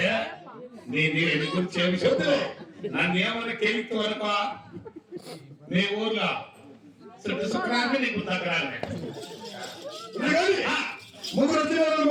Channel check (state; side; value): identical; both; correlation 1.00